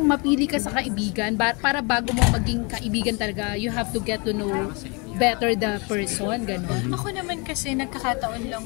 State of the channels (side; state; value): right; quieter; 30.9 dB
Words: mapili ka sa kaibigan para bago mo maging kaibigan talaga, you have to get to know better the person, gano'n? Ako naman kasi nagkakataon lang